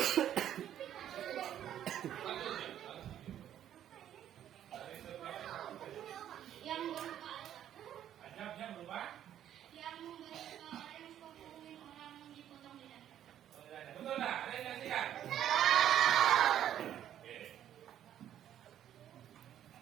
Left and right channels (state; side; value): quieter; left; 10.8 dB